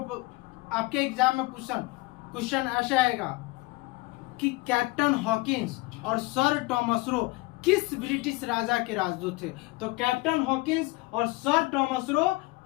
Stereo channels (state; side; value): quieter; right; 22.7 dB